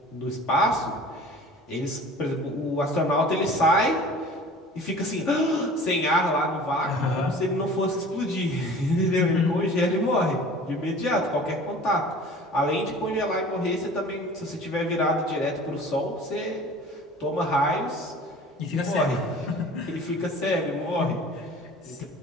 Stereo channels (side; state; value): both; normal; correlation 0.44